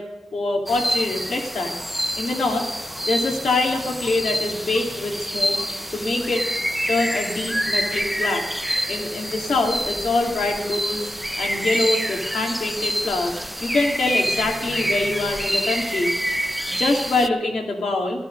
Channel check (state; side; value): normal; both; correlation 0.89